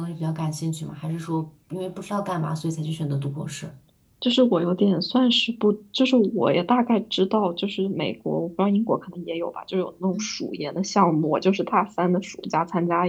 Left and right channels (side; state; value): both; identical; correlation 1.00